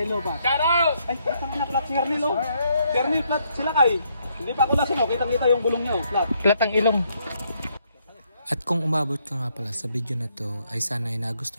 ba? Shoutout! Ay, kasama na flat si Hernil oh. Si Hernil flat sila kay. Hindi pa ako lasing oh, kitang-kita yung bulong niya oh, flat. Flat ang ilong. At kung umabot ka nga pala sa video na to ay sana ay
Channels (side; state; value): both; inverted; correlation -0.73